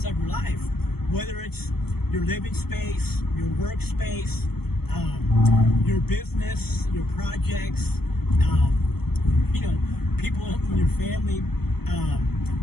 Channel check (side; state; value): right; late; 0.96 ms